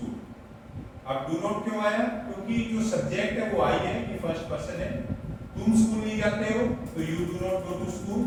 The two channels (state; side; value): identical; both; correlation 1.00